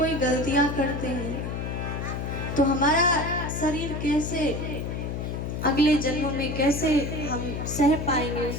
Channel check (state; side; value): noise; left; hum, 4 dB below the sound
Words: गलतियां करते हैं, तो हमारा शरीर कैसे अगले जन्मों में कैसे हम सह पाएंगे